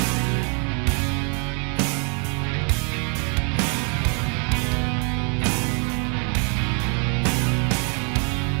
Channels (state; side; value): quieter; left; 38.5 dB